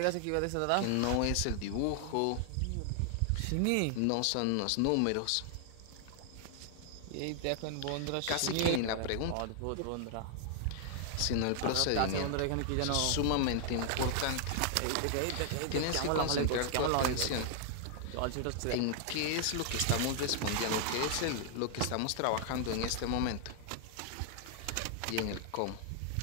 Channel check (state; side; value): different; both; correlation 0.00